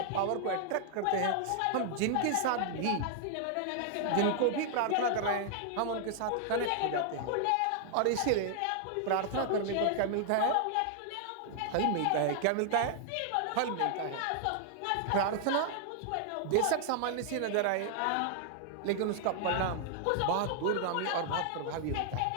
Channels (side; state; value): both; different; correlation 0.00